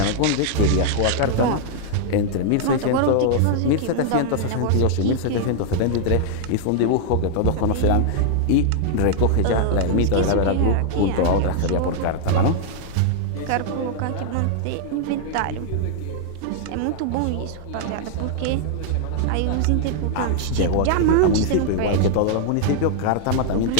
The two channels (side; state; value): both; different; correlation -0.01